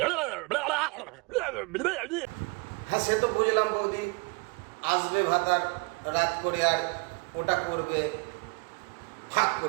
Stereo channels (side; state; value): left; quieter; 30.1 dB